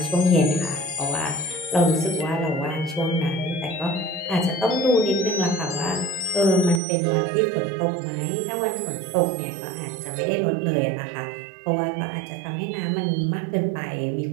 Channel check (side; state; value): left; drops out; at 6.8 s